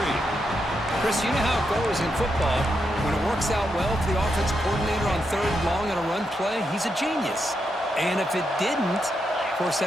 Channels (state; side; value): normal; both; correlation 0.83